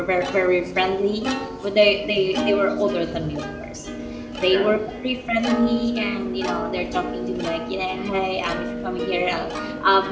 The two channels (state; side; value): identical; both; correlation 1.00